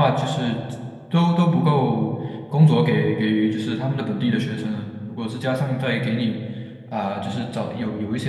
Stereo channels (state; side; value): identical; both; correlation 1.00